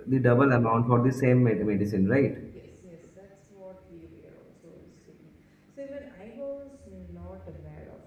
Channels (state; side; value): identical; both; correlation 1.00